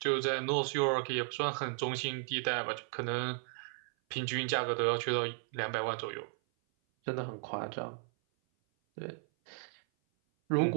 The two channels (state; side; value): silent; left; 55 dB below the other